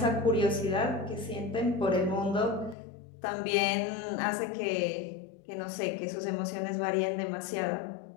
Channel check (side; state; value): right; drops out; at 2.8 s